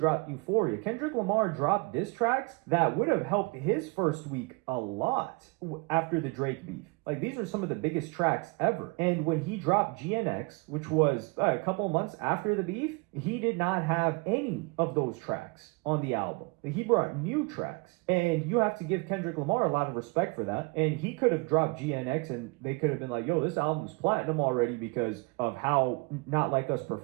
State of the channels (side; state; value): left; quieter; 28.6 dB